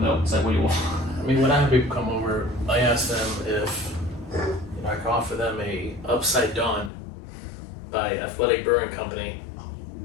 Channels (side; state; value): right; drops out; at 6.9 s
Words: milk. It's like, what do you want? I mean, when I have people come over, I ask them if I can offer them a Upside Dawn by Athletic Brewing Company.